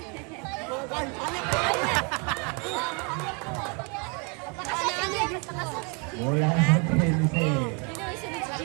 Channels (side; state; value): left; quieter; 33.8 dB